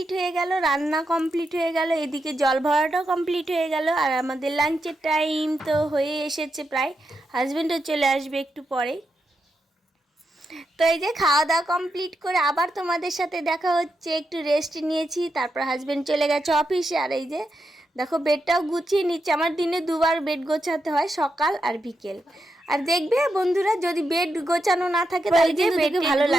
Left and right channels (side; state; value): both; normal; correlation 0.85